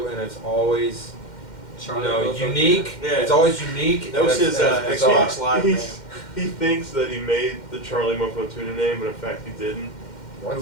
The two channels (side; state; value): right; late; 2.1 ms